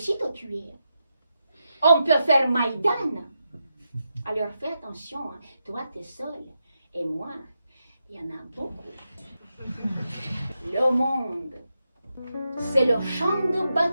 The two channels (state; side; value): inverted; both; correlation -0.86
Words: te tuer. On peut faire Maïdan. Alors fais attention, hein. Toi t'es seul, et moi, il y en a beaucoup. Le monde, c'est le champ de